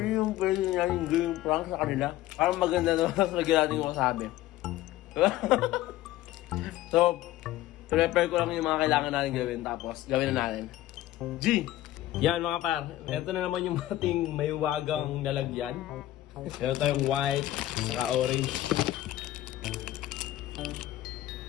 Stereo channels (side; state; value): right; quieter; 15.0 dB